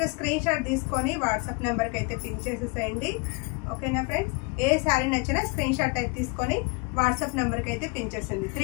గా స్క్రీన్ షాట్ తీసుకొని వాట్సాప్ నెంబర్ కి అయితే పింక్ చేసేసేయండి. ఓకేనా ఫ్రెండ్స్, ఏ శారీ నచ్చినా స్క్రీన్ షాట్ అయితే తీసుకొని వాట్సాప్ నెంబర్ కి అయితే పింక్ చేసేయండి.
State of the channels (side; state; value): right; quieter; 28.6 dB